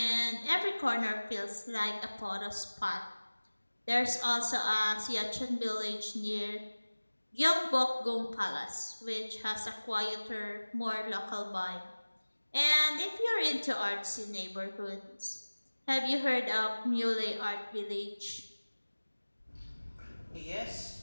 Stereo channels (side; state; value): both; inverted; correlation -1.00